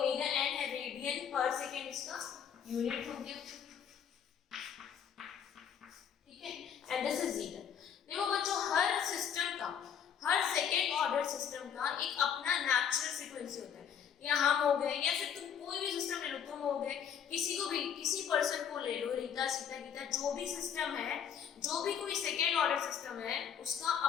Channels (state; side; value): quieter; right; 8.1 dB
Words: एन है, रेडियन पर सेकेंड इसका यूनिट हो गया, ठीक है। And this is zeta. देखो बच्चों, हर सिस्टम का, हर सेकेंड ऑर्डर सिस्टम का एक अपना नेचुरल फ्रीक्वेंसी होता है। या हम हो गए, या फिर तुम कोई भी सिस्टम ले लो, तुम हो गए, किसी को भी, किसी पर्सन को ले लो, रीता, सीता, गीता, जो भी सिस्टम है, जो भी कोई सेकेंड ऑर्डर सिस्टम है, उसका